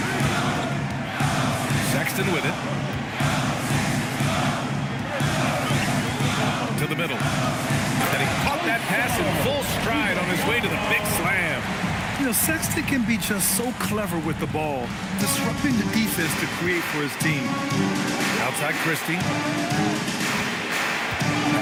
Sexton with it. To the middle. And he caught that pass in full stride on his way to the big You know, Sexton can be just so clever with the ball, disrupting the defense to create for his team. Outside Christie.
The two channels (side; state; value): both; identical; correlation 1.00